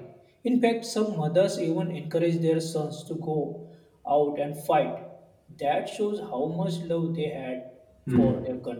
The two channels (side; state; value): both; identical; correlation 1.00